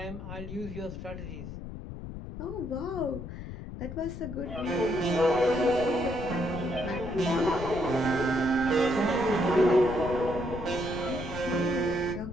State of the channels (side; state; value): left; noise; rumble, 9 dB below the sound